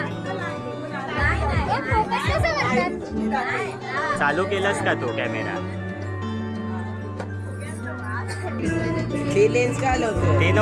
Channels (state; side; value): identical; both; correlation 1.00